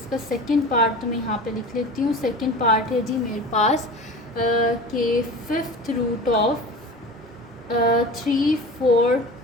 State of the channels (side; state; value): both; normal; correlation 0.35